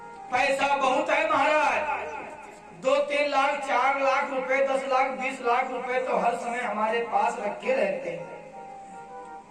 पैसा बहुत है महाराज, 2-3 लाख 4 लाख रुपए, 10 लाख 20 लाख रुपए तो हर समय हमारे पास रखे रहते हैं।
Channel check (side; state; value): both; identical; correlation 1.00